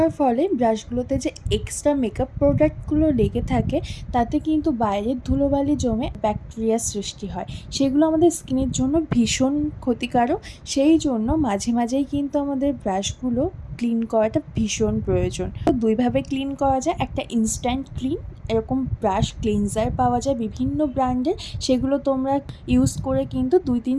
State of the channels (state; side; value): identical; both; correlation 1.00